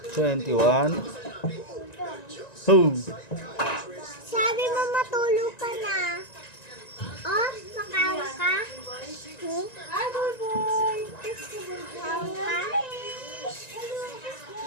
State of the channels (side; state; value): right; late; 1.9 ms